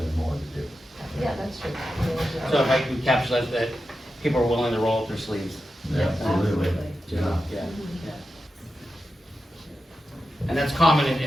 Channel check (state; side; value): normal; both; correlation 0.90